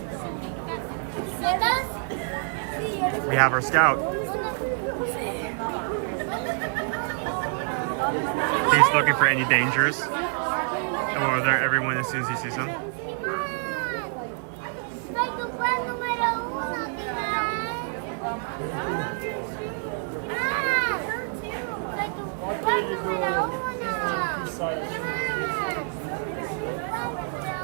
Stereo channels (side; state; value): left; silent; 55 dB below the other